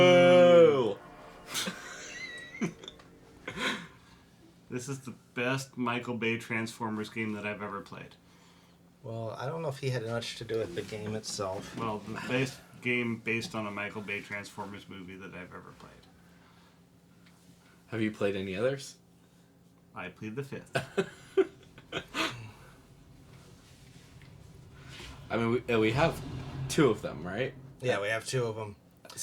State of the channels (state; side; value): identical; both; correlation 1.00